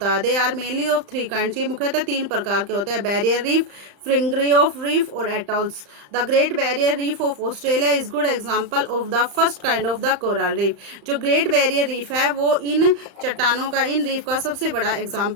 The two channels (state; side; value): late; left; 35 ms